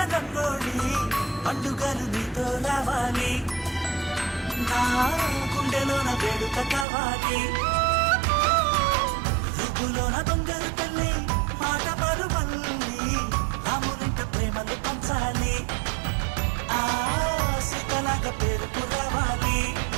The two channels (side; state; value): left; drops out; at 6.9 s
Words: రంగోళి, పండుగలు నీతో రావాలి, నా గుండెలోన వేడుక కావాలి. రుబ్బులోన దొంగలు తల్లి మాట పరువల్లి, రామునింట ప్రేమలు పంచాలి, ఆ సీతలాగా పేరుకు రావాలి.